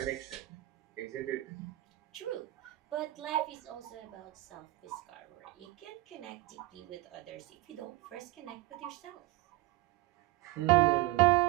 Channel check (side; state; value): left; quieter; 18.3 dB